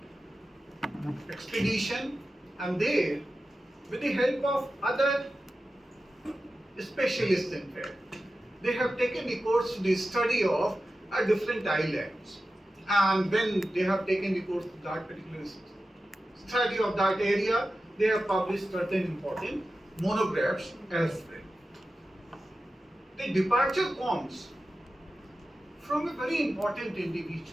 expedition, and there, with the help of other specialists, in fact, they have taken recourse to the study of are different islands. And when they have taken the course of that particular study of that area, they have published certain important monographs as well. The departure comes from a very important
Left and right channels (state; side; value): normal; both; correlation 0.93